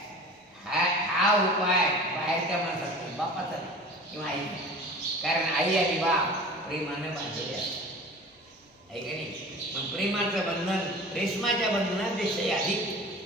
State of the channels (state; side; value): normal; both; correlation 0.39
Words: हा उपाय बाहेरच्या माणसाचा बापाचा किंवा आई. कारण आई आणि बाप प्रेमानं बांधलेले असतात आहे का नाही. मग प्रेमाचं बंधन रेशमाच्या बंधनापेक्षा अधिक